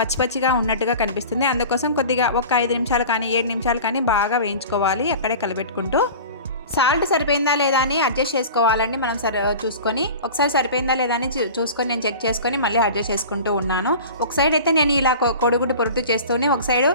పచ్చిగా ఉన్నట్టుగా కనిపిస్తుంది. అందుకోసం కొద్దిగా ఒక 5 నిమిషాలు కానీ 7 నిమిషాలు కానీ బాగా వేయించుకోవాలి అక్కడే కలబెట్టుకుంటూ. సాల్ట్ సరిపోయిందా లేదా అని అడ్జస్ట్ చేసుకోవాలండి. మనం చూసుకొని ఒకసారి సరిపోయిందా లేదా అని చూసుకొని నేను చెక్ చేసుకొని మళ్ళీ అడ్జస్ట్ చేసుకుంటూ ఉన్నాను. ఒక సైడ్ అయితే నేను ఇలా కోడిగుడ్డు పొరుటు చేస్తూనే ఒక సైడ్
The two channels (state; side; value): inverted; both; correlation -0.37